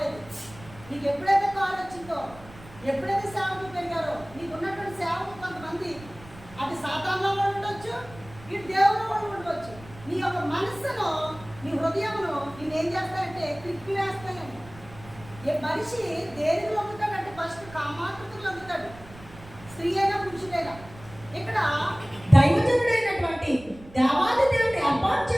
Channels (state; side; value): noise; right; rumble, 19 dB below the sound